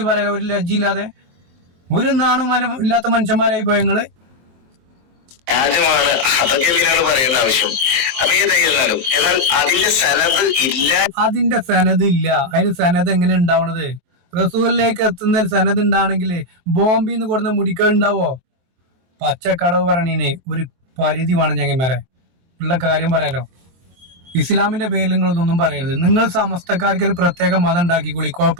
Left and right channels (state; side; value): late; left; 23 ms